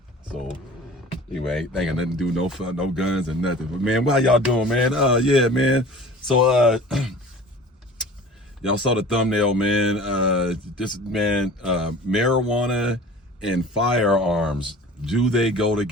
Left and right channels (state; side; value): normal; both; correlation 0.43